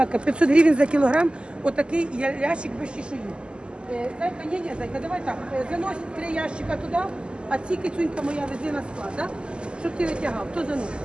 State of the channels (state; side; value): late; left; 0.050 ms